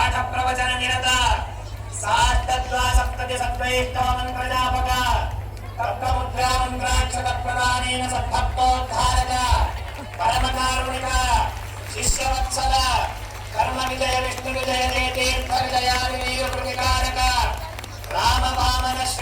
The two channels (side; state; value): both; identical; correlation 1.00